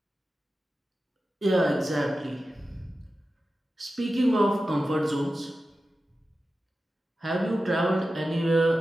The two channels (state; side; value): normal; both; correlation 0.93